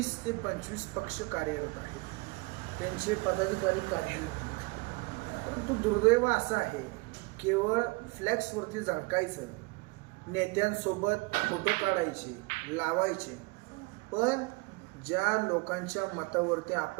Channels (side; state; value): left; quieter; 26.6 dB